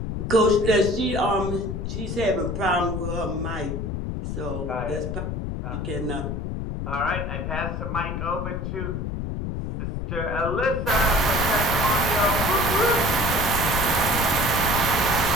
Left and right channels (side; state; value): left; noise; rumble, 4 dB below the sound